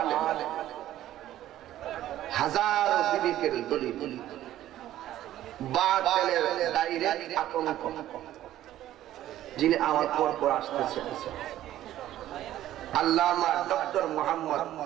हजारों विवेकेर दलिल बातिलेर डायरेक्ट आतंक जिन्हें आवाज पर आसतेছেন আল্লামা ডক্টর মোহাম্মদ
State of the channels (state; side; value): quieter; left; 13.3 dB